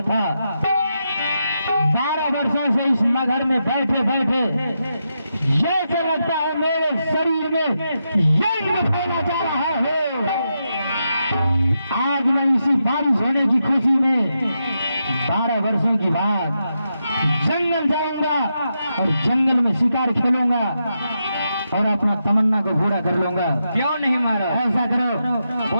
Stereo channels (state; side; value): inverted; both; correlation -0.85